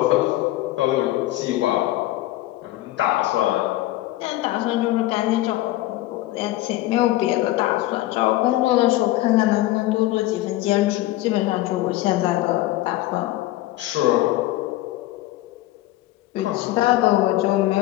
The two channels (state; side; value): quieter; right; 16.4 dB